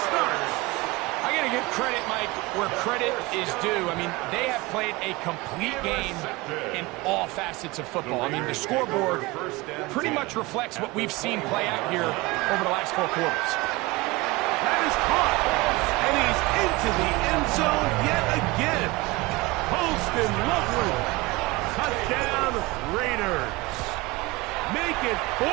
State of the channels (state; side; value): quieter; left; 22.3 dB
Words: Starks. I got to give credit, Mike, where credit is due. I mean, they have played a complete game in all facets of football. I mean, the scoreboard pretty much reflects what we've seen play out here over the last 4 quarters. That is caught. And he's into the end zone yet again. Holston Loveland. Touchdown, Raiders. Make it 4